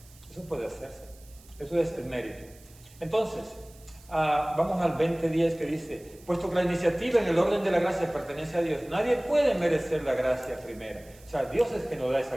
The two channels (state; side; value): noise; right; hiss, 25 dB below the sound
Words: Eso puede hacerse. Eso es el mérito. Entonces, vamos al 20:10 que dice, puesto que la iniciativa en el orden de la gracia pertenece a Dios, nadie puede merecer la gracia primera. O sea, Dios es que nos da esa